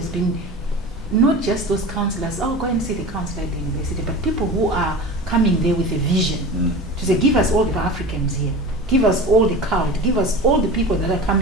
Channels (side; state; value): both; normal; correlation 0.33